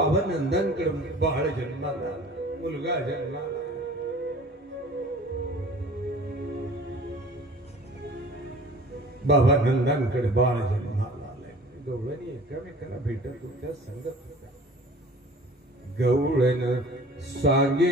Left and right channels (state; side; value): normal; both; correlation 0.45